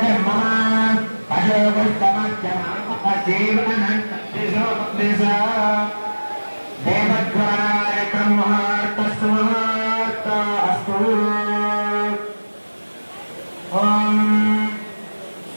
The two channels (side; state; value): both; inverted; correlation -1.00